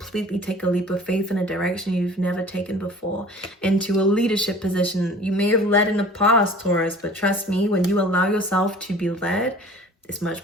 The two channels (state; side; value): normal; both; correlation 0.46